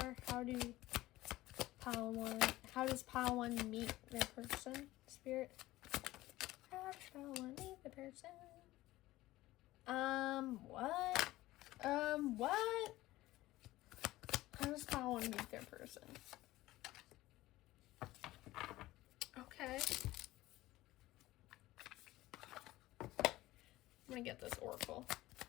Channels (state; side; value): quieter; right; 17.2 dB